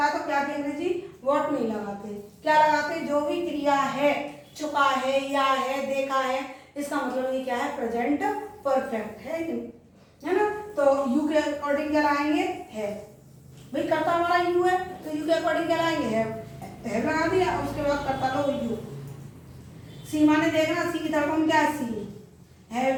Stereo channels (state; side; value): identical; both; correlation 1.00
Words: है, तो क्या की अंग्रेजी व्हाट नहीं लगाते, क्या लगाते, जो भी क्रिया है, चुका है, या है, देखा है, इसका मतलब ये क्या है, प्रेजेंट परफेक्ट है ना। तो यू के अकॉर्डिंग क्या लाएंगे, है, भाई कर्ता हमारा यू है, तो यू के अकॉर्डिंग क्या लाएंगे, है लगा दिया, उसके बाद कर्ता लो यू। सी माने देखना, सी की तरफ हम क्या है, सी,